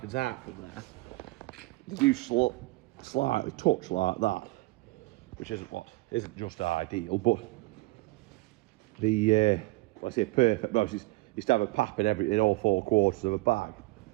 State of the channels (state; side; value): quieter; left; 22.5 dB